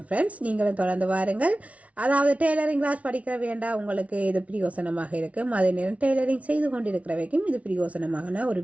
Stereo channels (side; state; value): left; late; 0.066 ms